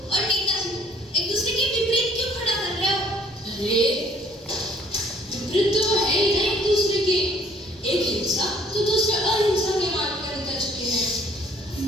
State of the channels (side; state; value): both; normal; correlation 0.59